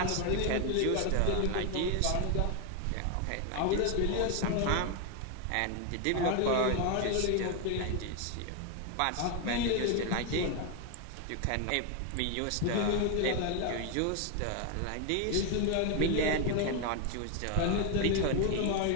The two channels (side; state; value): both; different; correlation 0.01